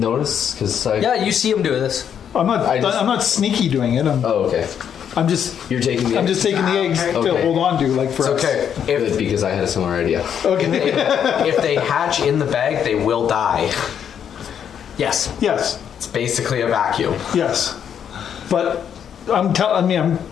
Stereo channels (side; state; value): right; quieter; 8.5 dB